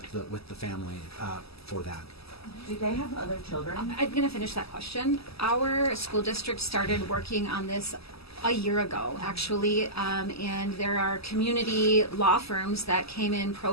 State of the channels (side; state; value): right; late; 0.77 ms